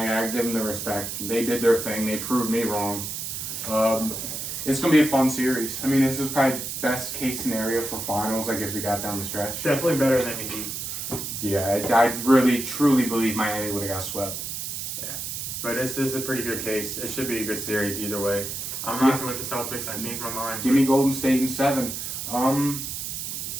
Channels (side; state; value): right; noise; hiss, 5 dB below the sound